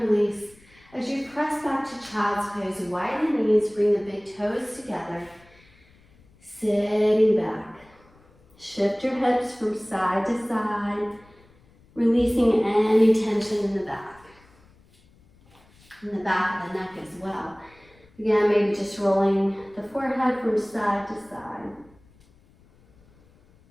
release. As you press back to child's pose, widen the knees, bring the big toes together. Sitting back. Shift your hips from side to side, releasing any tension in the back of the neck as well. Again, maybe just rolling the forehead from side to side.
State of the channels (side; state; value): left; noise; rumble, 29 dB below the sound